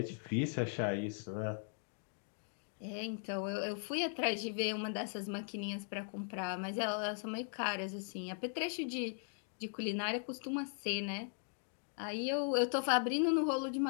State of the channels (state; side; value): silent; right; 52 dB below the other